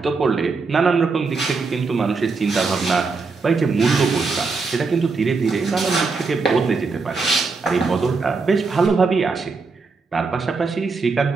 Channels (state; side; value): quieter; left; 4.3 dB